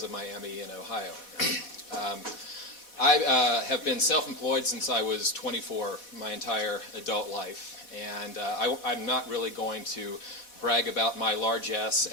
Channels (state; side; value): late; right; 4.1 ms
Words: a Miami in Ohio. I have been self-employed since I was 24, my entire adult life, and I'm not really going to brag about my largesse